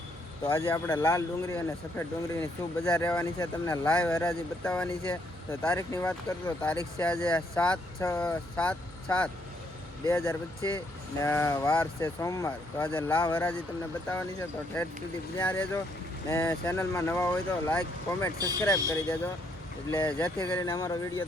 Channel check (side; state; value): both; normal; correlation 0.72